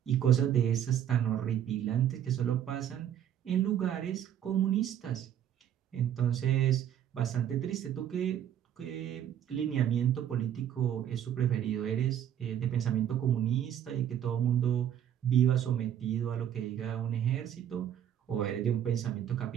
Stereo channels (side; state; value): left; quieter; 10.2 dB